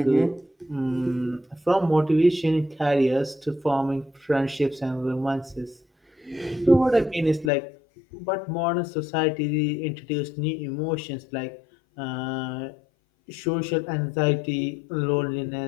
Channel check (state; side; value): drops out; right; at 7.5 s